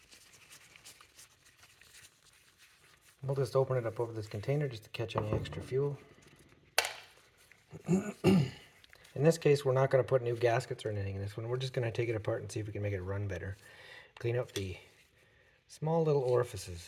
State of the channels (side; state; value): both; identical; correlation 1.00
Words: We'll just open it up over this container just to catch any extra fuel. In this case, we're not going to put new gaskets or anything in this one. We're just going to take it apart and see if we can make it run better. Clean up the small little